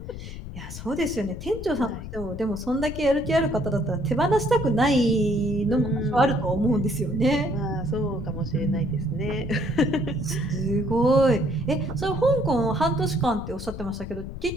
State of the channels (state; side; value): noise; left; rumble, 10 dB below the sound